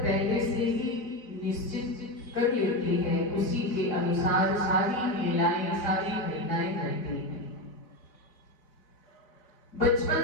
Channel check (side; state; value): right; late; 4.0 ms